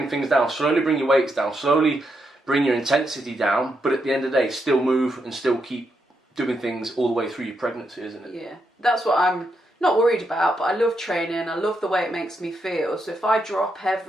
things down, slowly bring your weights down, slowly bring your intensity down, but at the end of the day, still move and still keep doing things all the way through your pregnancy, isn't it? Yeah, that's what I'm not worried about, but I love training. I love the way it makes me feel. So if I drop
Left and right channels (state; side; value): normal; both; correlation 0.81